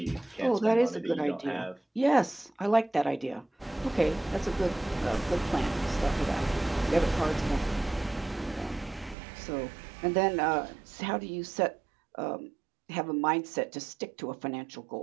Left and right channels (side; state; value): left; drops out; at 9.2 s